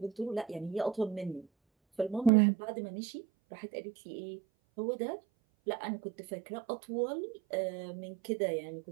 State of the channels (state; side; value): drops out; left; at 2.3 s